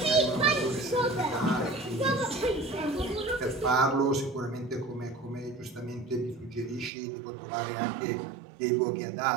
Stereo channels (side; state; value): left; drops out; at 6.9 s